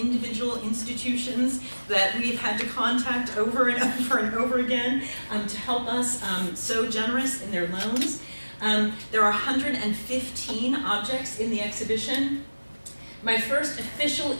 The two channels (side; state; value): both; inverted; correlation -1.00